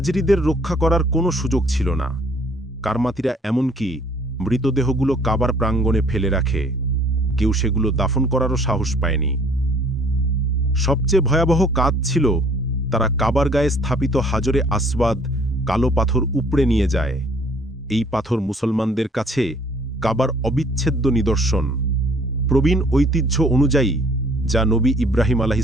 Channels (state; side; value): normal; both; correlation 0.58